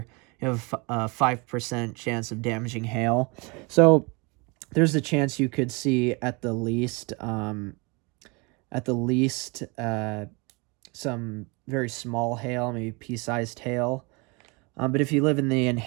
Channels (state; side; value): quieter; left; 29.0 dB